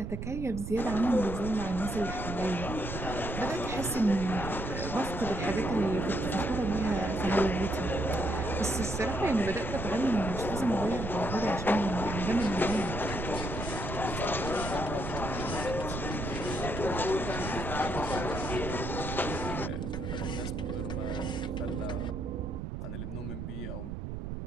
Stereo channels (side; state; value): right; noise; rumble, 6 dB below the sound